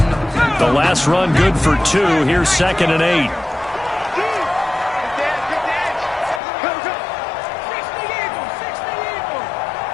The last run good for 2. Here's 2nd and 8.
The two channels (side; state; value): right; drops out; at 6.4 s